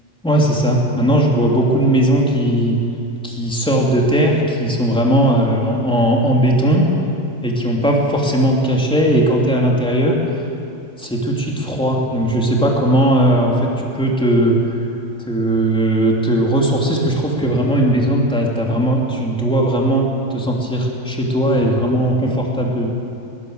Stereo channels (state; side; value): normal; both; correlation 0.31